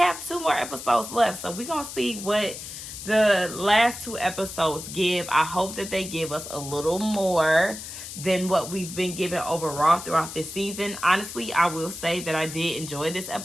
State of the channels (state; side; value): noise; left; hiss, 10 dB below the sound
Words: 2 more episodes left, so we're gonna see what the last 2 episodes give. I hope that they give us a little more than what we've been given overall throughout this season. Honestly, I will say that I did enjoy this